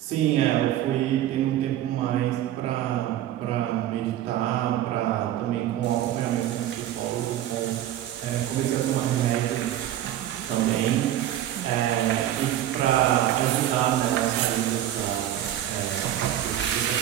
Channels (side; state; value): left; quieter; 12.2 dB